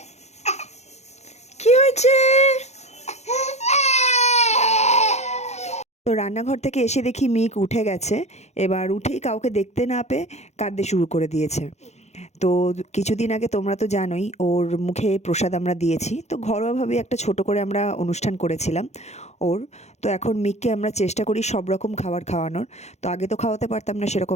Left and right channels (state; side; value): late; right; 0.32 ms